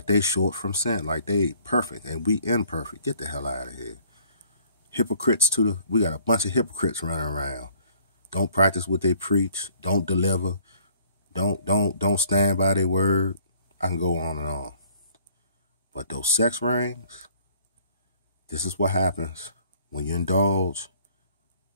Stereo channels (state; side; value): inverted; both; correlation -0.58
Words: short from sin, like they perfect, and we imperfect. Get the hell out of here. Hypocrites we got a bunch of hypocrites running around. Don't practice what they preach. Don't deliver. Don't stand by their word. I can go on and on. But those sex rings, this is what happens when you indulge